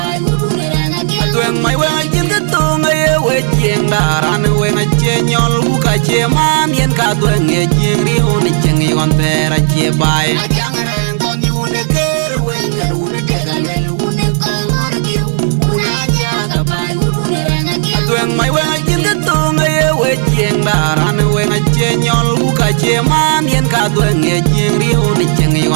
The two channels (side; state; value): left; silent; 60 dB below the other